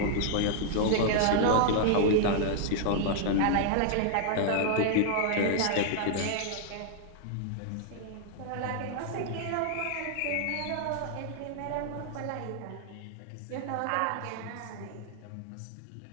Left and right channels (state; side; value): different; both; correlation -0.01